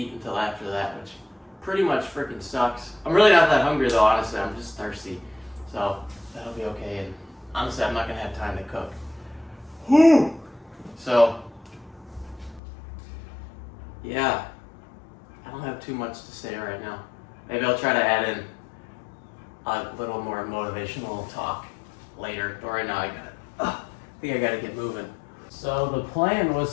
until after that, which pretty much freaking sucks. I'm really not that hungry though, honestly. I'm just thirsty. So that'll be okay. And honestly, I'm not gonna have time to cook. So, yeah. I don't have too much to say right now. Maybe I'll try to add in a little more motivational talk later. But right now I think I gotta get moving. So the plan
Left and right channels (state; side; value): drops out; right; at 12.6 s